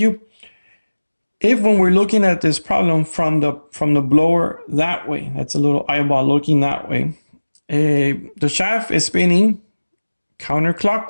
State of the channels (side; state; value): both; inverted; correlation -1.00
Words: if when we're looking at this problem from the blower that way, that's a little eyeball looking that way, the shaft is spinning